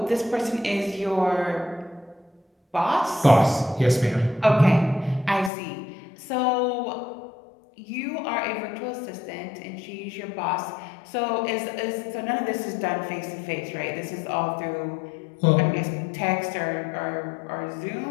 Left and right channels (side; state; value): right; drops out; at 5.5 s